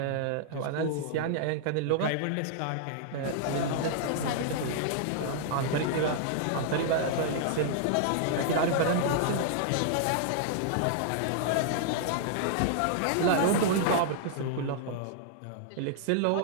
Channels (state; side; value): different; both; correlation -0.01